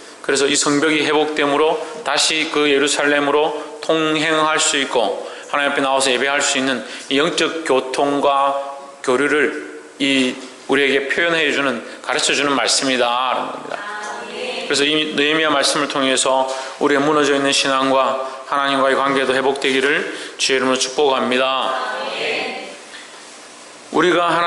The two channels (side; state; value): both; identical; correlation 1.00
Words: 그래서 이 성벽이 회복됨으로 다시 그 예루살렘으로 통행할 수 있고 하나님 앞에 나와서 예배할 수 있는 이 영적 교통과 교류를 우리에게 표현해 주는, 가르쳐 주는 말씀이다 라는 겁니다. 그래서 이 느헤미야 말씀을 통해서 우리의 무너져 있는 신앙과 하나님과의 관계도 회복되기를 주의 이름으로 축복합니다. 우리가